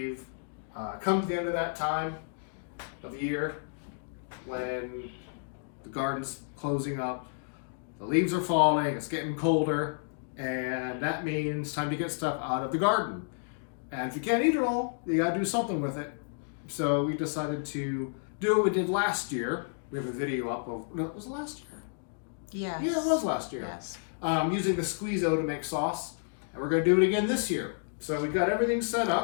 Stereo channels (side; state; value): right; silent; digital silence